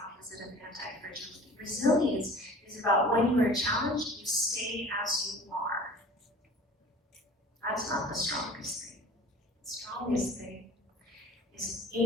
opposite of anti-fragility. Resilience is about when you are challenged, you stay as you are. That's not the strongest thing. The strongest thing is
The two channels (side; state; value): both; normal; correlation 0.44